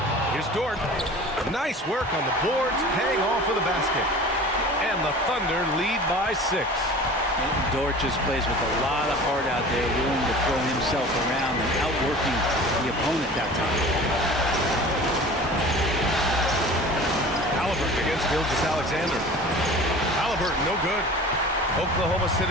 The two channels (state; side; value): normal; both; correlation 0.40